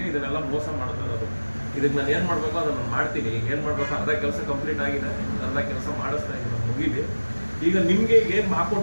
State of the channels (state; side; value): inverted; both; correlation -1.00